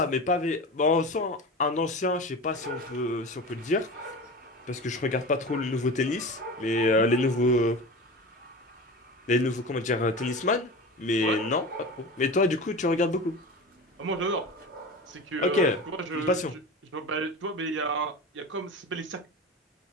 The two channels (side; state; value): both; normal; correlation 0.31